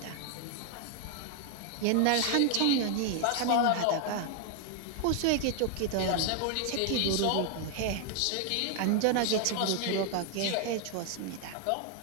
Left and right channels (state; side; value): different; both; correlation 0.00